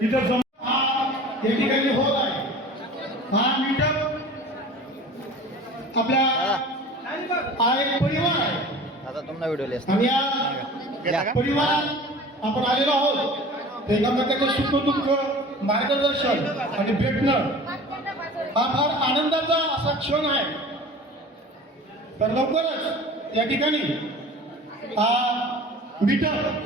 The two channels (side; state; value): both; normal; correlation 0.41